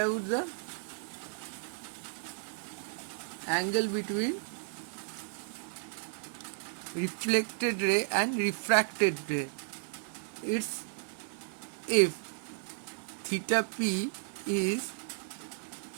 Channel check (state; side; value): silent; left; 55 dB below the other